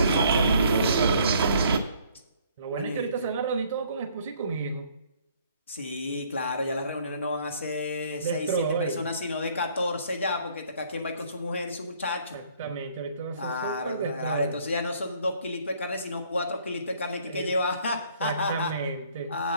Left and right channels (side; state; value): both; inverted; correlation -0.61